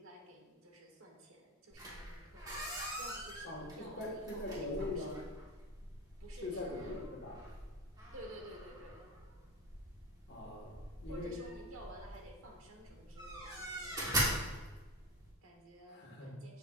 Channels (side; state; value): both; normal; correlation 0.24